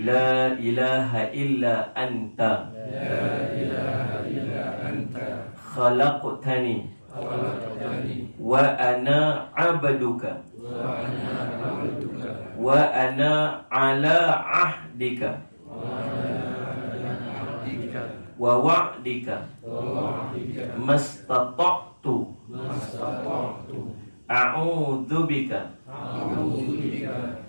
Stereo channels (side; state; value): both; inverted; correlation -1.00